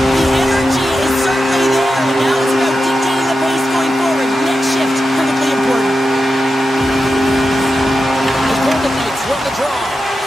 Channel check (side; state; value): both; normal; correlation 0.90